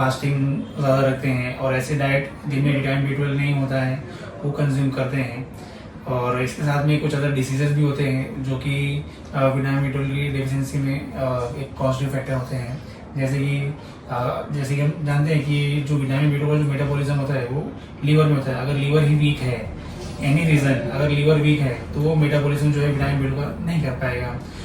ज़्यादा रखते हैं, और ऐसे डाइट जिनमें विटामिन B12 नहीं होता है वो कंज्यूम करते हैं, और इसके साथ में कुछ अदर डिसीजेज भी होते हैं जो कि विटामिन B12 की डेफिशिएंसी में एक कॉस्टिव फैक्टर होते हैं। जैसे कि हम जानते हैं कि जो विटामिन B12 जो मेटाबॉलिज्म होता है वो लीवर में होता है। अगर लीवर ही वीक है, एनी रीज़न अगर लीवर वीक है, तो वो मेटाबॉलिज्म जो है विटामिन B12 का नहीं कर पाएगा।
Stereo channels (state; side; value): identical; both; correlation 1.00